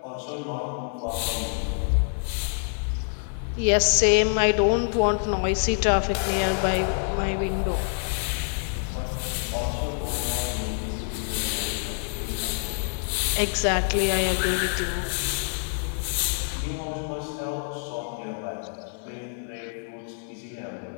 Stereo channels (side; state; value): right; silent; 59 dB below the other